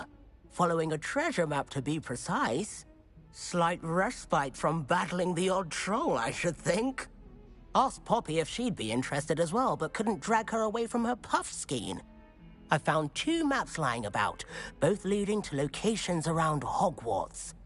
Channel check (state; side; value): identical; both; correlation 1.00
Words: Following a treasure map, to be precise. Slight respite from battling the odd troll, I should think. Asked Poppy if she'd be interested as well, but couldn't drag her away from her puff skein. I found 2 maps lying about, both leading to locations around Hogwarts.